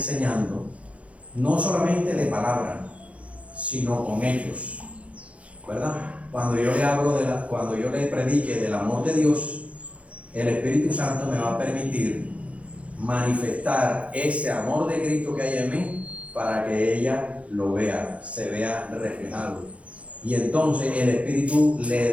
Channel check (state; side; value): late; left; 0.064 ms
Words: no solamente de palabra, sino con hechos, ¿verdad? Cuando yo le hablo cuando yo le predique del amor de Dios, el Espíritu Santo me va a permitir manifestar ese amor de Cristo que hay en mí para que ella lo vea, se vea reflejado. Y entonces el Espíritu le